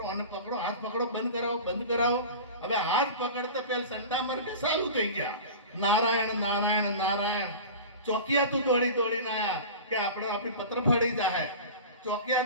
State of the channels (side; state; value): both; inverted; correlation -0.34